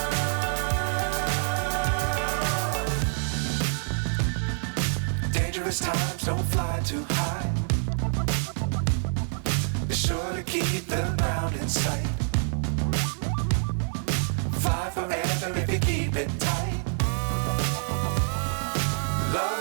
Times don't fly too high. Be sure to keep the ground in sight. Fly forever if you keep it tight. Love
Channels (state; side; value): silent; left; 60 dB below the other